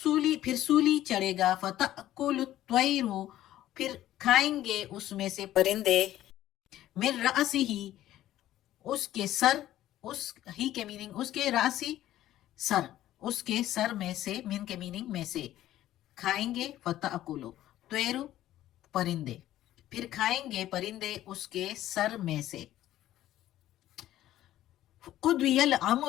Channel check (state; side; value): quieter; right; 13.6 dB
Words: پھر سولی چڑھے گا، فَتَأْكُلُ الطَّيْرُ پھر کھائیں گے اس میں سے پرندے، من رأسِهِ اس کے سر، اس ہی کے میننگ اس کے راسی سر، اس کے سر میں سے، من کے میننگ میں سے کھائیں گے، فتأکلو طیرو پرندے پھر کھائیں گے پرندے اس کے سر میں سے۔ قضی